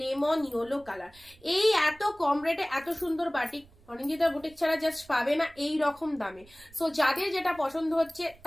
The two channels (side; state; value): right; noise; rumble, 26 dB below the sound